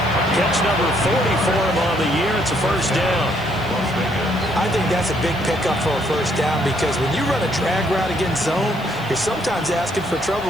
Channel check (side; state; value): left; noise; hiss, 24 dB below the sound